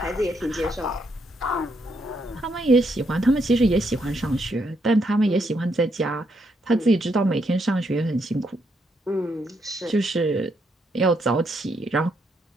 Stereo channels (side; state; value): both; normal; correlation 0.77